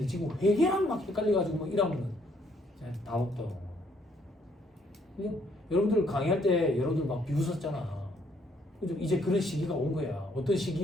지금 회계랑 막 헷갈려가지고 뭐 이러면은 다 없다고. 여러분들 강의할 때 여러분들 막 비웃었잖아. 그죠? 이제 그런 시기가 온 거야. 어떤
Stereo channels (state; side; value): normal; both; correlation 0.68